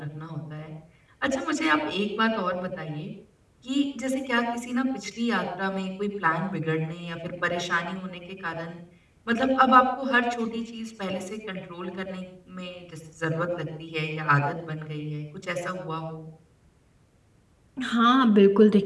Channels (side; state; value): both; identical; correlation 1.00